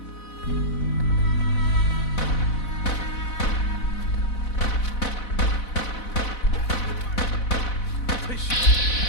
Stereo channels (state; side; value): late; right; 4.0 ms